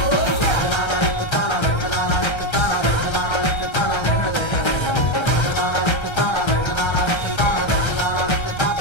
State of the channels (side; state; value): right; late; 1.3 ms